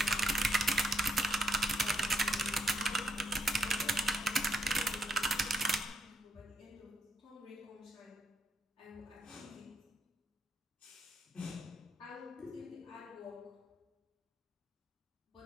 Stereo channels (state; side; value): normal; both; correlation 0.77